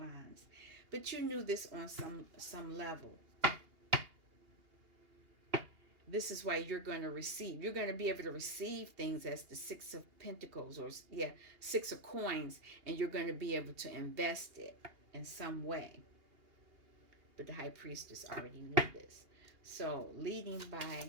But you knew this on some level. This is why you're going to receive. You're going to be able to receive things as the 6 of Pentacles, or 6 of Coins, and you're going to be able to invest it in some way. But the High Priestess already knew this. So, leading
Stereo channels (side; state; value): left; late; 2.8 ms